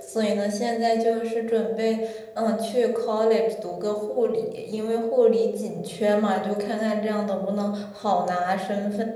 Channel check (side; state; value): both; identical; correlation 1.00